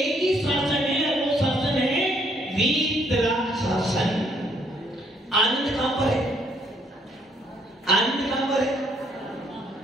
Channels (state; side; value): normal; both; correlation 0.68